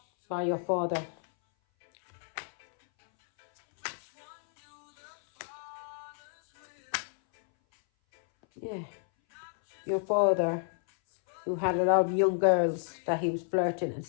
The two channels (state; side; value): silent; right; 57 dB below the other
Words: by your father. Yeah. Your father, who had a lot of young girls that he was flirting and